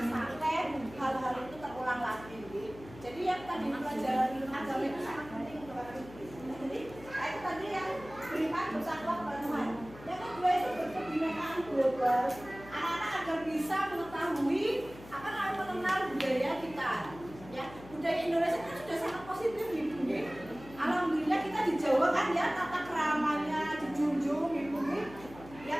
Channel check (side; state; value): left; noise; hum, 18 dB below the sound